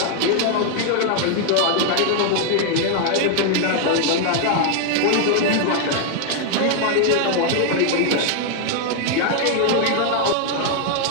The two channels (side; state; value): both; different; correlation 0.00